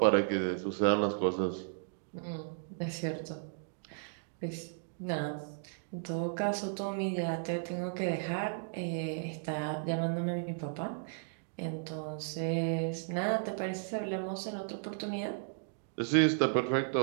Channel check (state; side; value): silent; left; digital silence